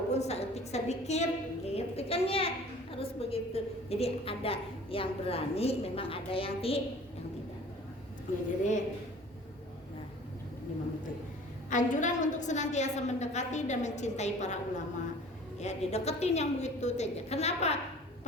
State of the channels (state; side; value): normal; both; correlation 0.47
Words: seetik sedikit gitu kan ya, harus begitu. Jadi ada yang berani, memang ada yang tidak. Ya, jadi anjuran untuk senantiasa mendekati dan mencintai para ulama. Ya, dideketin yang begitu saja. Kenapa?